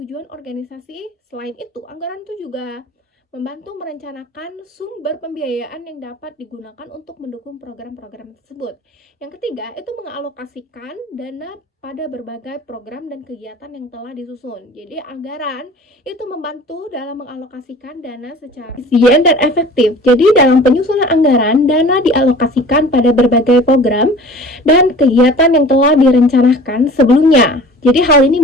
organisasi. Selain itu, anggaran itu juga membantu merencanakan sumber pembiayaan yang dapat digunakan untuk mendukung program-program tersebut. Yang ketiga, itu mengalokasikan dana pada berbagai program dan kegiatan yang telah disusun. Jadi, anggaran itu membantu dalam mengalokasikan dana secara efisien dan efektif. Jadi, dalam penyusunan anggaran, dana dialokasikan pada berbagai program dan kegiatan yang telah direncanakan sebelumnya. Jadi hal ini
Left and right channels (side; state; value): both; normal; correlation 0.44